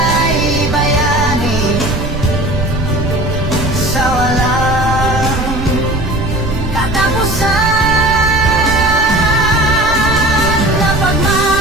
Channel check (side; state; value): right; noise; rumble, 6 dB below the sound